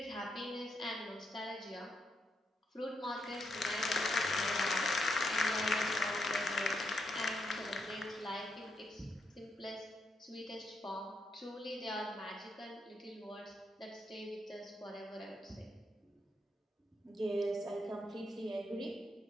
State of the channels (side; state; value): both; normal; correlation 0.80